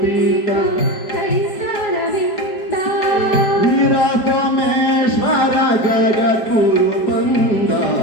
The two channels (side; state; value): right; late; 4.8 ms